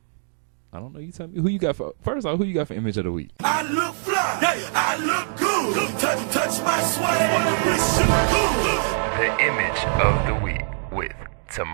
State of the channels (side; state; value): left; silent; digital silence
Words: I don't know. You tell me who you got for. First off, who you got for image of the week? I look fly. Yeah, I look good. Touch my swag. The image of the week with